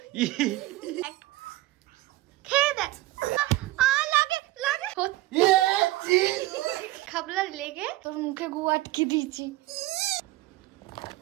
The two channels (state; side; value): quieter; left; 17.7 dB